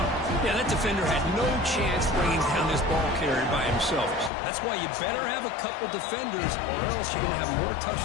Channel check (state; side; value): drops out; right; at 4.3 s